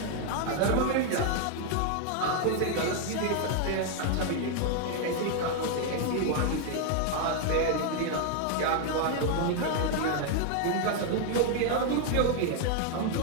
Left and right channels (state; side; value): different; both; correlation 0.00